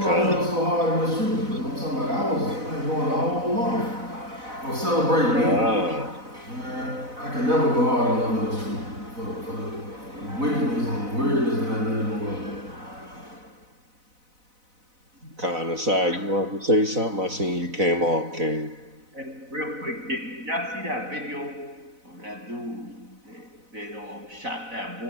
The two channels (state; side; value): late; left; 4.0 ms